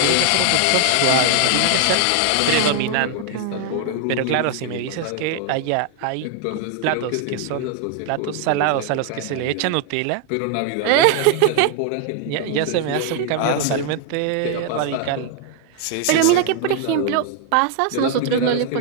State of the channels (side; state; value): both; different; correlation 0.00